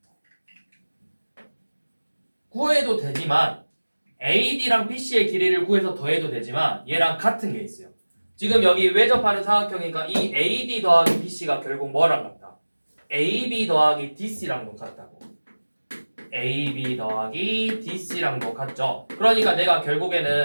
구해도 되지만 AD랑 BC의 길이를 구해서 더해도 되지만 얘랑 같은 게 있어요. 지금 여기 외접하는 사각형이니까 이 AD 더하기 BC가 결국 뭐랑 같다? AB 더하기 DC랑도 같다고. AB 더하기 DC랑도 같죠. 그러니까 내가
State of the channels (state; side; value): inverted; both; correlation -1.00